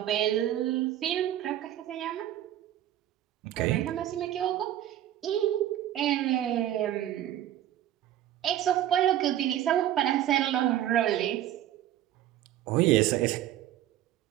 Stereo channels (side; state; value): left; quieter; 12.3 dB